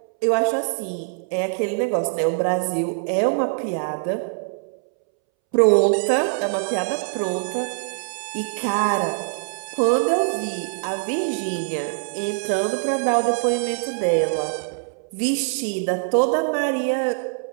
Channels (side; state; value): left; silent; 63 dB below the other